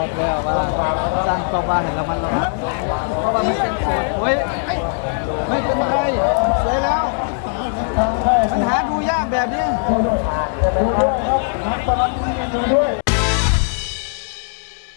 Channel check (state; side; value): silent; right; digital silence